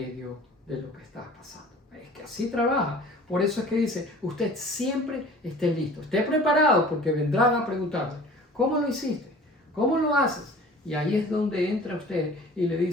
de lo que está pasando? Es que así trabaja. Por eso es que dice, usted siempre esté listo, esté preparado, porque vendrán a preguntarle, ¿cómo lo hiciste? ¿Cómo lo haces? Y ahí es donde entra usted y le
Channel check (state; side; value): normal; both; correlation 0.46